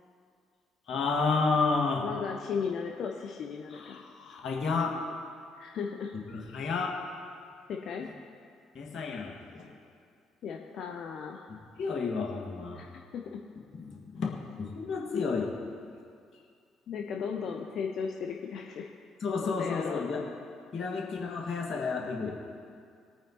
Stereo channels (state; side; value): quieter; right; 4.3 dB